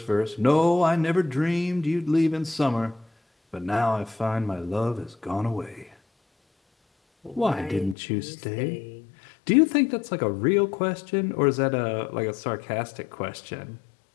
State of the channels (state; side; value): drops out; right; at 8.0 s